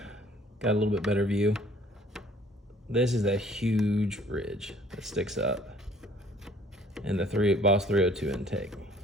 got a little bit better view. This is a huge ridge that sticks up in the Boss 302 intake.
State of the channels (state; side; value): normal; both; correlation 0.56